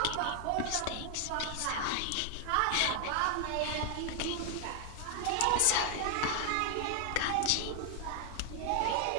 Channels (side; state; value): both; different; correlation 0.00